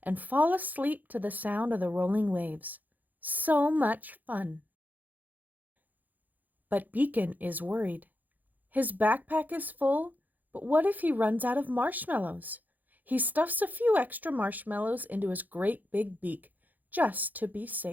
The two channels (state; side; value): late; left; 0.083 ms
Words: and fall asleep to the sound of the rolling waves. So much fun. But Beacon is worried. His backpack is full, but what if he runs out of marshmallows? He stuffs a few extra marshmallows into his great big beak, just to be